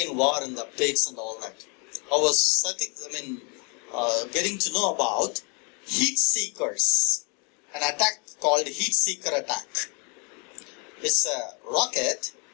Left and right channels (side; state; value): right; quieter; 33.6 dB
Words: war and the updates and all that. I was getting to know about heat seekers. An attack called heat seeker attack. It's a rocket.